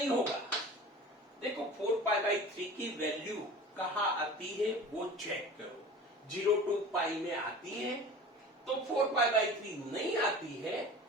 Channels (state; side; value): normal; both; correlation 0.38